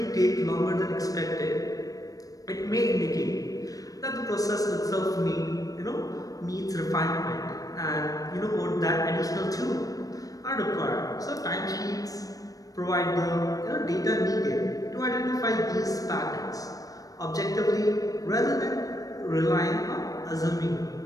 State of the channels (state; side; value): late; right; 0.17 ms